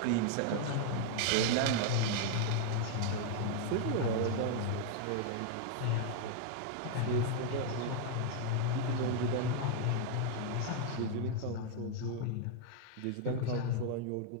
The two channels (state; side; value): different; both; correlation -0.01